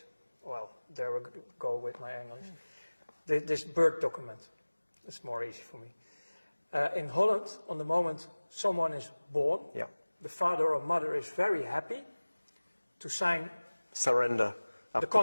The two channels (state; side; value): inverted; both; correlation -1.00